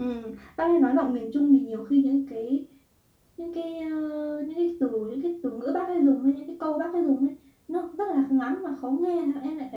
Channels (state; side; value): identical; both; correlation 1.00